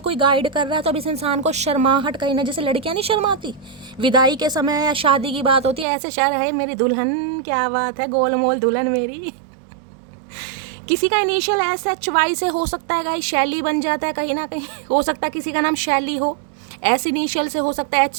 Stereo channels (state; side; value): drops out; left; at 5.9 s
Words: कोई गाइड कर रहा है तो अब इस इंसान को शर्माहट कहीं ना, जैसे लड़कियां नहीं शर्माती विदाई के समय या शादी की बात होती है, ऐसे शर है मेरी दुल्हन, क्या बात है, गोलमोल दुल्हन मेरी। किसी का इनिशियल SHY से हो सकता है गाइस, शैली बन जाता है कहीं ना कहीं। हो सकता है किसी का नाम शैली हो, S इनिशियल से हो सकता है,